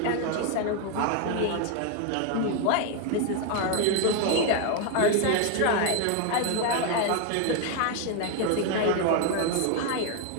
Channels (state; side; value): different; both; correlation 0.01